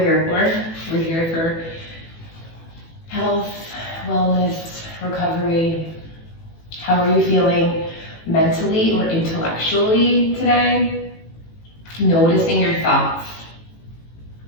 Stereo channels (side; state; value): right; late; 18 ms